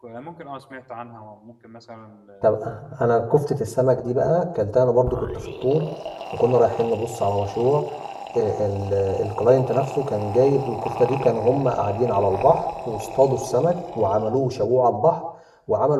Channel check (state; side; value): identical; both; correlation 1.00